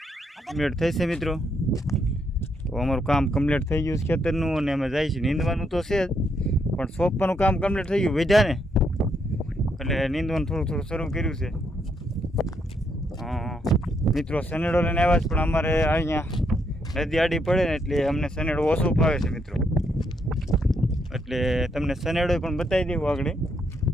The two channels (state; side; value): normal; both; correlation 0.76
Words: કમ્પ્લીટ થઈ છે મિત્રો. તો અમારું કામ કમ્પ્લીટ થઈ ગયું છે ખેતરનું, અને અમે જાય છે નીંદવાનું તો છે જ, પણ સોંપવાનું કામ કમ્પ્લીટ થઈ ગયું વધ્યા ને એટલે નીંદવાનું થોડું થોડું શરૂ કર્યું છે. મિત્રો સનેડો લઈને આવ્યા છે, પણ અમારે અહીંયા નદી આડી પડે ને એટલે અમને સનેડો ઓછો ફાવે છે મિત્રો, એટલે તમને સનેડો પણ બતાવી દેવું આગળ